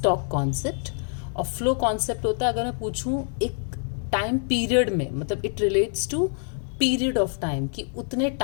कॉन्सेप्ट। और फ्लो कॉन्सेप्ट होता है अगर मैं पूछूं एक टाइम पीरियड में, मतलब it relates to period of time कि उतने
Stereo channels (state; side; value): silent; right; 57 dB below the other